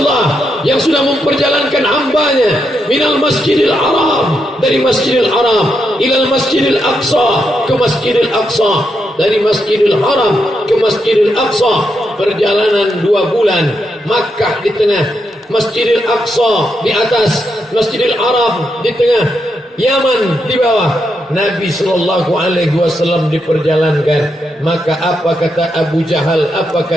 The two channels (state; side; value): normal; both; correlation 0.82